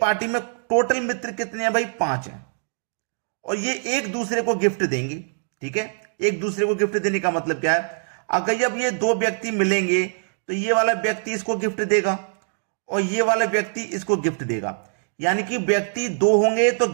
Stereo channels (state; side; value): silent; left; digital silence